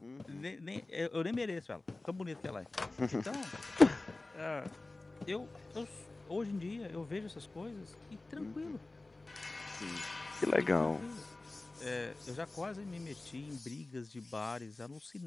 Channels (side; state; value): right; quieter; 3.1 dB